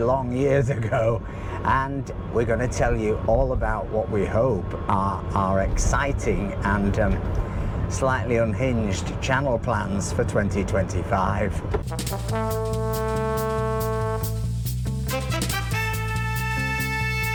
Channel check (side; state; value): both; identical; correlation 1.00